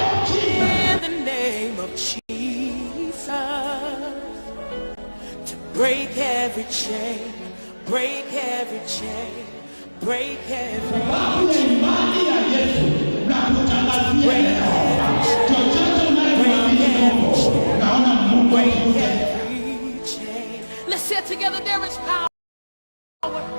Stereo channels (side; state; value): both; inverted; correlation -1.00